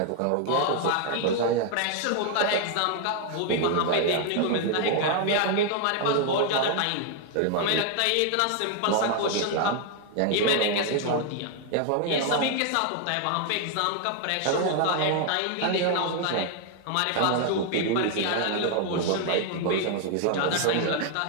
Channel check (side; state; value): both; different; correlation 0.00